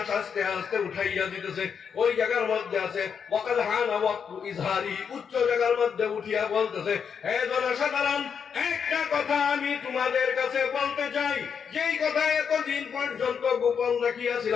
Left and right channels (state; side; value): quieter; right; 6.9 dB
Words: আস্তে আস্তে উঠাইয়া দিতেছে। ওই জায়গার মধ্যে আছে ওয়াকাদ হানা ওয়াক্তু ইজহারি, উচ্চ জায়গার মধ্যে উঠিয়া বলতেছে, হে জনসাধারণ, একটা কথা আমি তোমাদের কাছে বলতে চাই, যেই কথা এতদিন পর্যন্ত গোপন